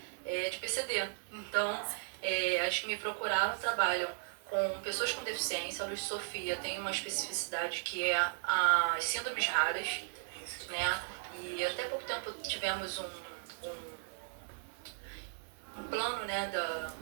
é de PCD. Então, as que me procuraram trabalham com pessoas com deficiência. A Luz Sofia tem uma especificidade que é as síndromes raras, né? E até pouco tempo tivemos um plano, né,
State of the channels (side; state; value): left; silent; digital silence